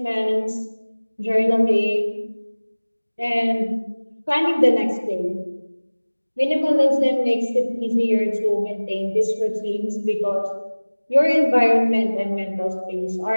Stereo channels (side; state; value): both; inverted; correlation -1.00